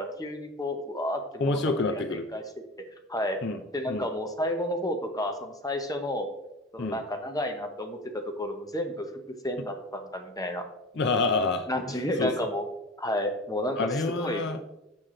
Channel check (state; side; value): normal; both; correlation 0.33